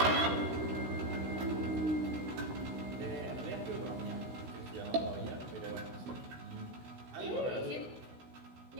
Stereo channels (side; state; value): left; late; 16 ms